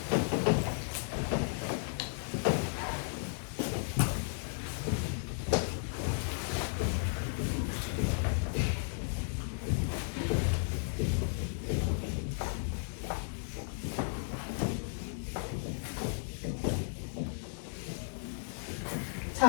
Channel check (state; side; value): silent; right; digital silence